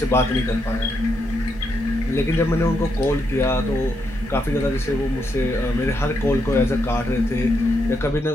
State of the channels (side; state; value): both; normal; correlation 0.80